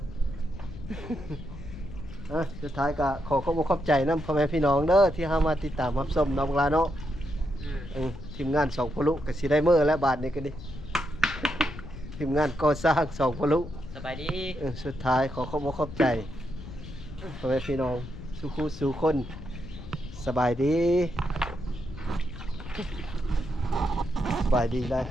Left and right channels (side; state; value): left; noise; rumble, 12 dB below the sound